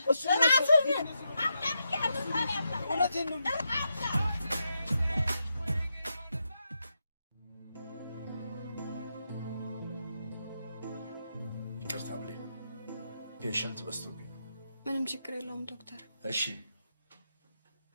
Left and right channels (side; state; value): both; inverted; correlation -0.84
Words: እውነቴን ነው ይቅርታ ብለኝ ፔሸንት በዝቶብኝ ነው ምንም ችግር የለውም ዶክተር እሺ